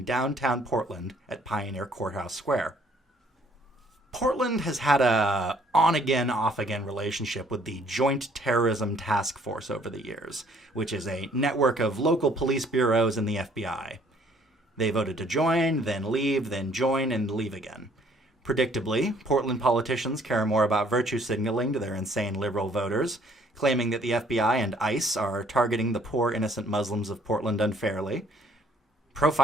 downtown Portland at Pioneer Courthouse Square. Portland has had a on-again, off-again relationship with the Joint Terrorism Task Force over the years, which is a network of local police bureaus and the FBI. They voted to join, then leave, then join, and leave again. Predictably, Portland politicians care more about virtue signaling to their insane liberal voters, claiming that the FBI and ICE are targeting the poor innocent Muslims of Portland unfairly,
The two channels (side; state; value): both; normal; correlation 0.62